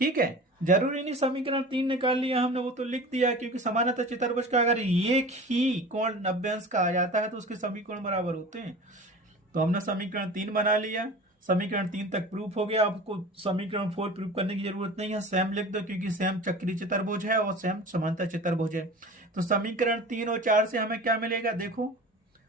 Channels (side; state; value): both; normal; correlation 0.37